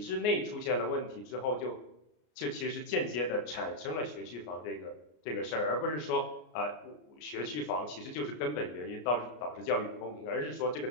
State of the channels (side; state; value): right; late; 33 ms